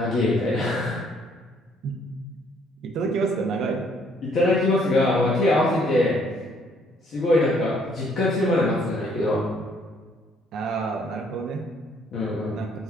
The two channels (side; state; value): both; normal; correlation 0.65